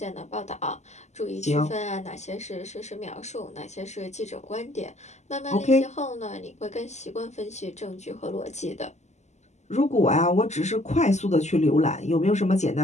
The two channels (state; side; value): late; right; 0.33 ms